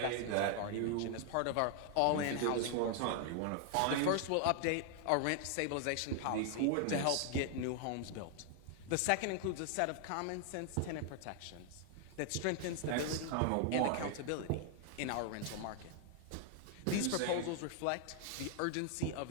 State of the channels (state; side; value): different; both; correlation 0.00